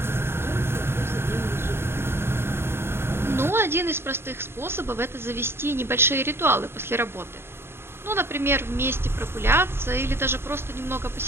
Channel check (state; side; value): late; left; 0.11 ms